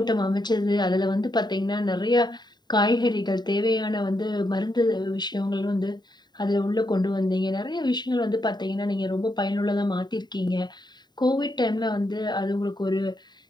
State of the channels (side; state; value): right; late; 0.21 ms